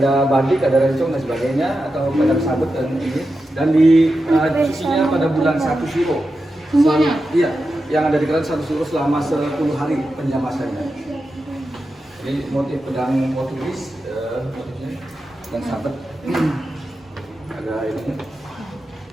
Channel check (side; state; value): both; normal; correlation 0.90